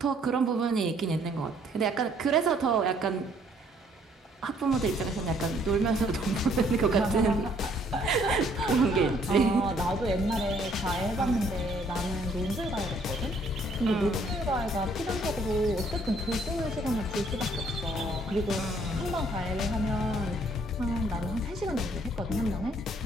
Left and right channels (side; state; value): both; normal; correlation 0.64